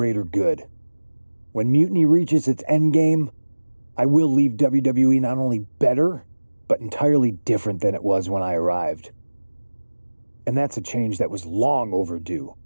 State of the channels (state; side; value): inverted; both; correlation -1.00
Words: good. When Mutiny reaches its endgame, I will leave WWE not only better, but entirely different than it was when I arrived. And that's a change that was long overdue.